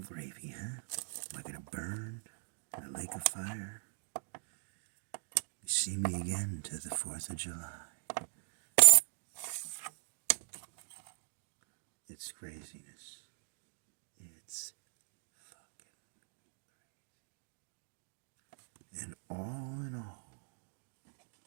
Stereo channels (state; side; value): silent; left; digital silence